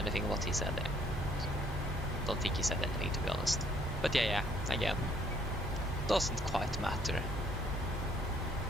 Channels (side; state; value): both; normal; correlation 0.64